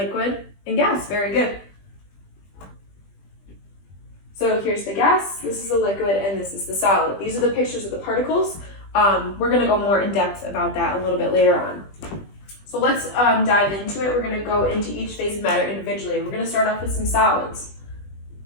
and gas. Very good. So here's the gas, this is the liquid, and this is the solid. These are the pictures of the particles. We're going to go more in depth about that a little bit later on. So let's dive into it. We're going to go into each phase of matter individually. We're going to start off with some solids.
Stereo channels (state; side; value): late; right; 20 ms